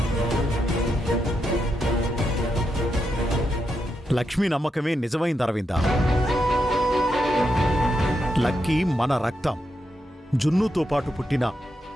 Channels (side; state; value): both; normal; correlation 0.84